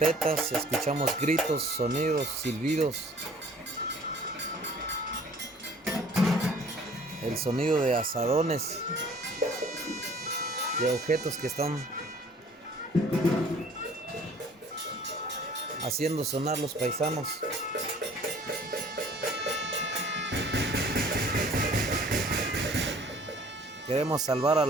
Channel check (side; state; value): both; normal; correlation 0.53